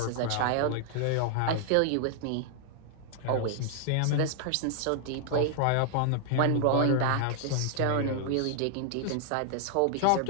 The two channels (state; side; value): different; both; correlation 0.00